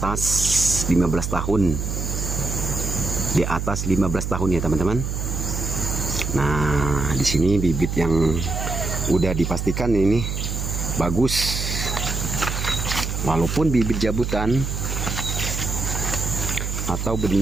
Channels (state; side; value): noise; right; hum, 3 dB below the sound